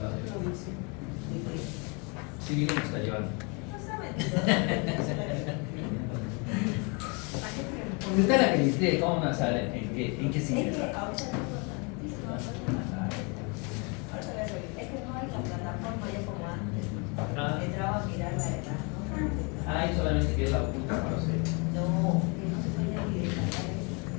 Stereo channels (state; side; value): quieter; right; 32.2 dB